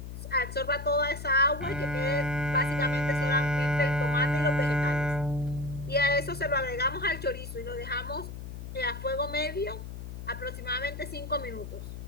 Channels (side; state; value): left; noise; hum, 9 dB below the sound